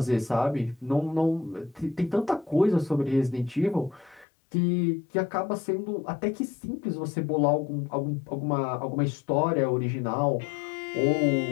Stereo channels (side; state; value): right; drops out; at 4.2 s